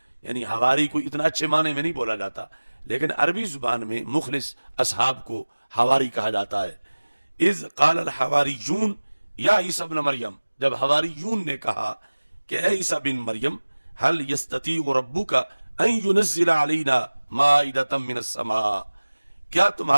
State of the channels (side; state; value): both; inverted; correlation -1.00